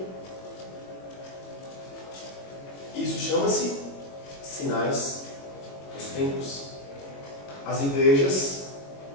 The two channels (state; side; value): late; right; 21 ms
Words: Isso chama-se sinais dos tempos. As igrejas